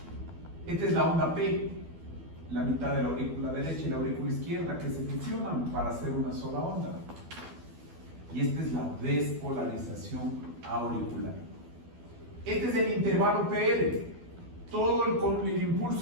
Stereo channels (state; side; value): late; left; 12 ms